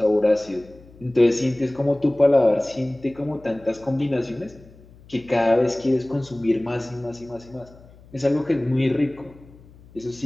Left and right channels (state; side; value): noise; left; hum, 24 dB below the sound